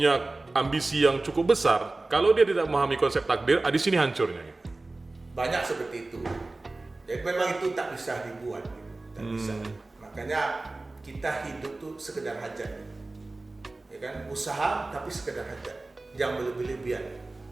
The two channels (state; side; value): quieter; left; 3.1 dB